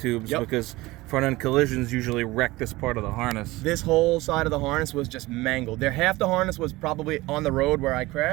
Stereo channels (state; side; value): quieter; left; 19.9 dB